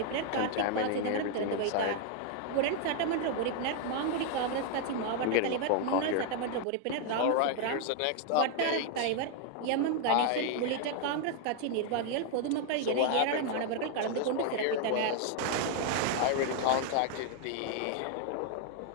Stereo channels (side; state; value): both; different; correlation 0.00